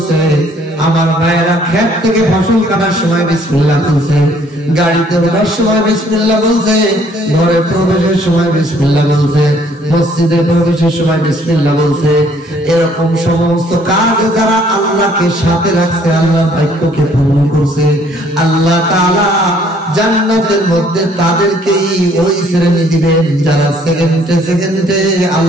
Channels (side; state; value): both; normal; correlation 0.62